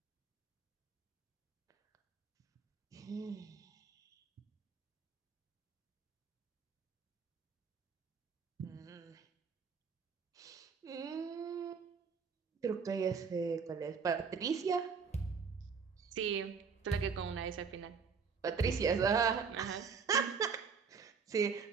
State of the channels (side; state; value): left; quieter; 5.8 dB